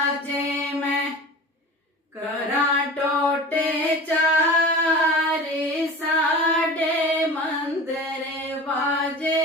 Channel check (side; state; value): both; normal; correlation 0.36